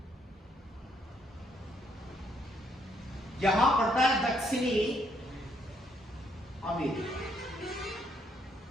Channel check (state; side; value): normal; both; correlation 0.72